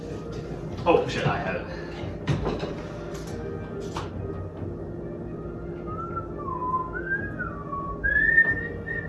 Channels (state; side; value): identical; both; correlation 1.00